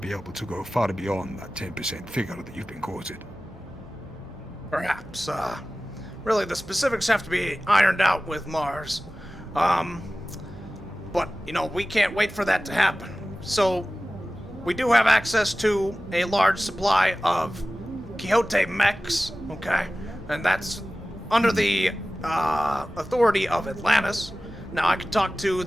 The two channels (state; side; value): normal; both; correlation 0.97